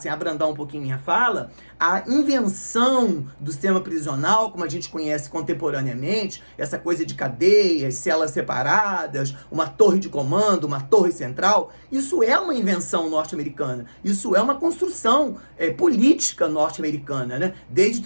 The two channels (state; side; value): inverted; both; correlation -1.00